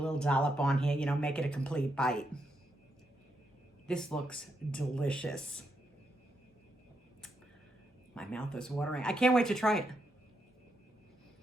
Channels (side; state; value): both; normal; correlation 0.81